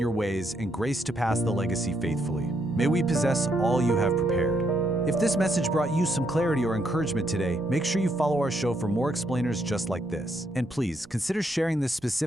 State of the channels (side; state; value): right; noise; rumble, 26 dB below the sound